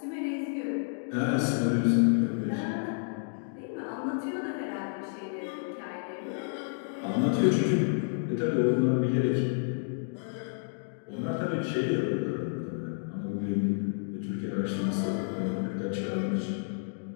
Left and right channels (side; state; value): right; silent; digital silence